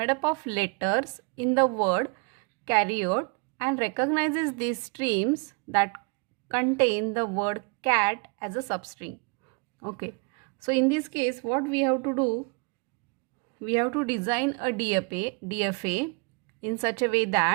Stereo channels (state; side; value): quieter; left; 33.6 dB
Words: up of letters in the word carrot and recognizes these strings that contain the word cat as a substring. Okay, so in this case what we have to do, we have to design a DFA in such a way